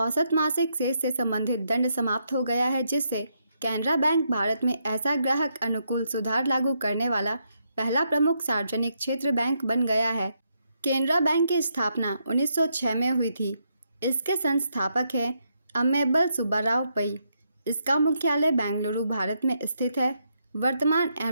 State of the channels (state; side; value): inverted; both; correlation -0.78